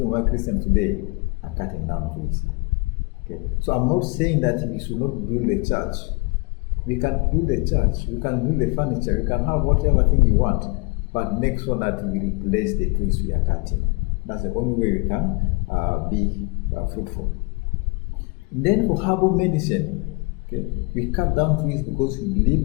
why Christians today are cutting down trees. Okay? So I'm not saying that we should not build a church. We can build a church, we can build a furniture, we can have whatever thing you want, but make sure that we replace the trees we are cutting. That's the only way we can be fruitful. And then for herbal medicine, okay, we cut down trees because we believe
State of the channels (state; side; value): quieter; right; 29.5 dB